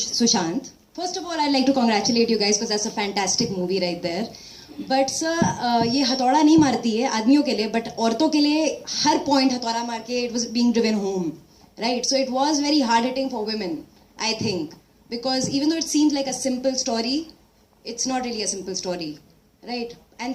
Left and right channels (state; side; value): identical; both; correlation 1.00